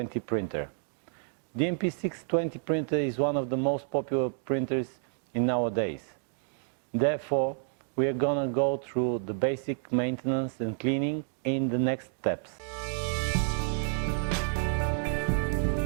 printer. DNP 620 printer is one of the most popular printers in nowadays. Therefore, we are going to go through the basic maintenance and cleaning in the next steps.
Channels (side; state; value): left; silent; digital silence